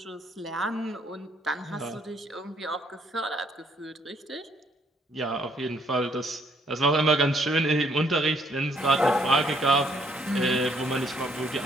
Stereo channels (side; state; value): both; normal; correlation 0.68